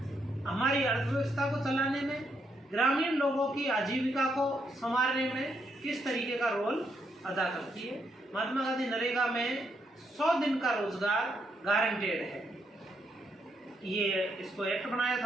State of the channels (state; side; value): normal; both; correlation 0.77